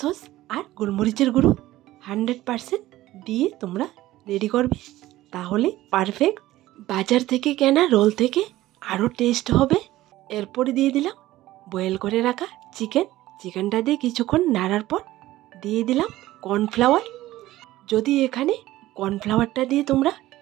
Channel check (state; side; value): quieter; left; 16.0 dB